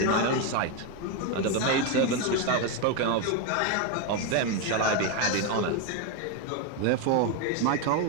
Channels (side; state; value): both; different; correlation 0.02